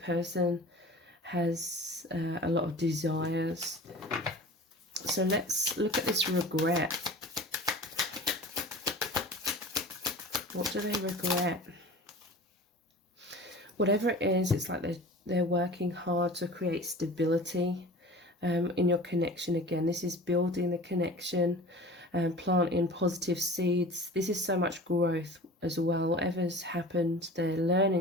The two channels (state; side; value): normal; both; correlation 0.39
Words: has a lot of desires. So let's look at this regret. What do they regret? Whatever it is, it's like they're working hard to create stability in your connection. Again, this is building the connection and planting positive seeds. This is so much growth as well. Whatever's happened, they're